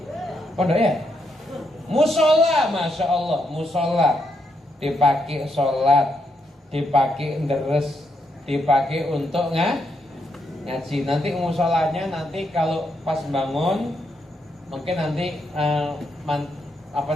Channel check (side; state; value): both; normal; correlation 0.79